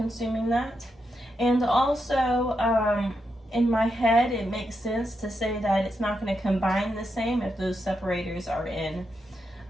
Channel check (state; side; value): normal; both; correlation 0.84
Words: that. And also in my head it makes sense to say that it's not going to combine the same if those separators are in